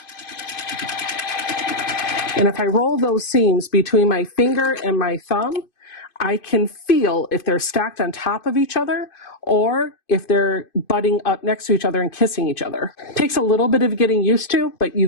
And if I roll those seams between my finger and my thumb, I can feel if they're stacked on top of each other or if they're butting up next to each other and kissing each other. It takes a little bit of getting used to, but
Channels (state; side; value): late; right; 2.5 ms